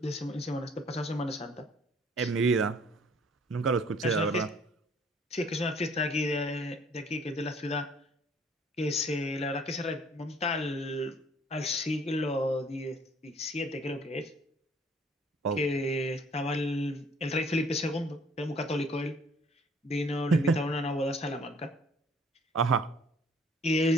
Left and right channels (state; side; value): normal; both; correlation 0.57